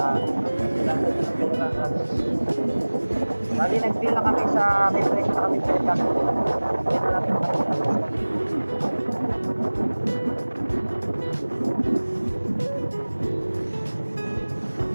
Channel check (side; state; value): both; inverted; correlation -1.00